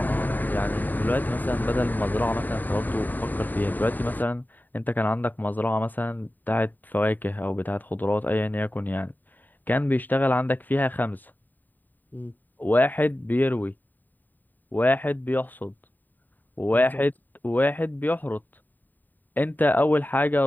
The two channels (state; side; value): late; right; 0.088 ms